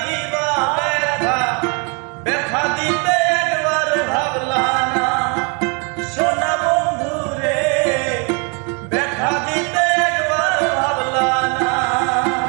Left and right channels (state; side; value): quieter; left; 34.1 dB